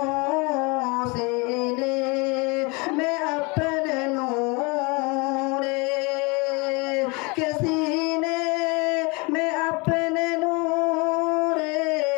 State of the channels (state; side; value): quieter; right; 28.6 dB